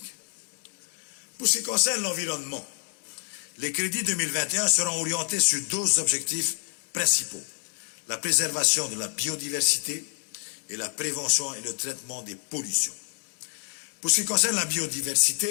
Pour ce qui concerne l'environnement, les crédits 2021 seront orientés sur deux objectifs principaux: la préservation de la biodiversité et la prévention et le traitement des pollutions. Pour ce qui concerne la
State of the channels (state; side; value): silent; right; digital silence